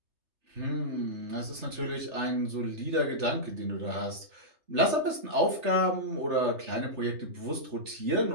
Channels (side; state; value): left; late; 3.4 ms